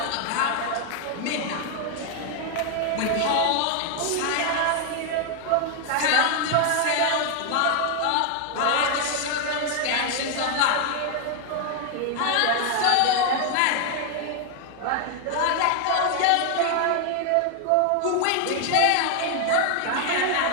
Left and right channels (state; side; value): different; both; correlation 0.00